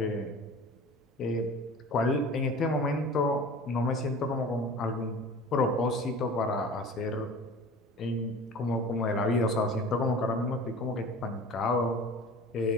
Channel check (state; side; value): normal; both; correlation 0.40